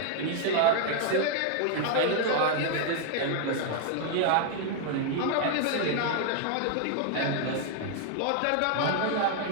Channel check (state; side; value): different; both; correlation 0.00